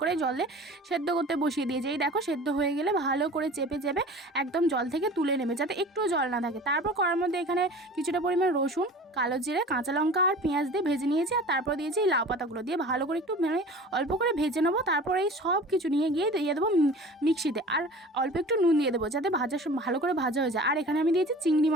করে জলে সেদ্ধ করতে বসিয়ে দিয়েছি। এই দেখো, সেদ্ধ হয়ে গেলে ভালো করে চেপে চেপে একদম জল থেকে তুলে নেবে, যাতে একটুও জল না থাকে। তারপর কড়ার মধ্যে এখানে কিছুটা পরিমাণ রসুন, কালো জিরে, কাঁচা লঙ্কা আর পেঁয়াজ দিয়ে ভেজে নিয়েছি। আর তারপর দিয়েছি এই লাউ পাতাগুলো দিয়ে ভালো করে একটু অল্প করে ভেজে নেবো। তারপর এই সব কিছু নিয়ে গিয়ে দিয়ে দেবো মিক্সিতে, আর অল্প একটু নুন দিয়ে দেবো যাতে ভালো করে ভাজা হয়ে যায়। আর এখানে আমি দিয়েছি চিংড়ি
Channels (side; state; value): both; normal; correlation 0.41